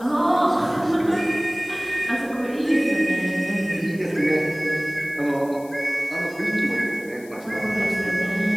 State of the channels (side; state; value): left; noise; hiss, 23 dB below the sound